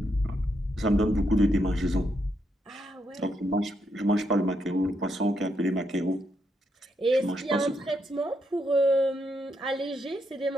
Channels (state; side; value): normal; both; correlation 0.79